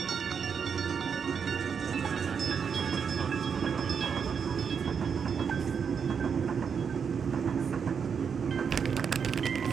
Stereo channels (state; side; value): quieter; left; 6.6 dB